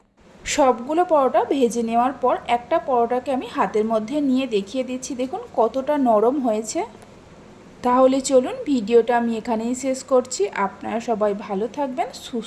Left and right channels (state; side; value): identical; both; correlation 1.00